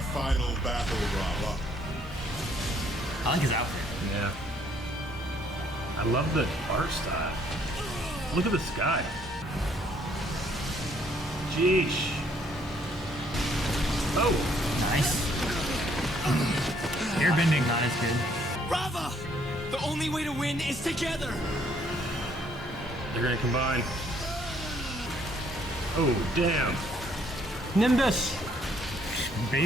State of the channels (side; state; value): both; normal; correlation 0.66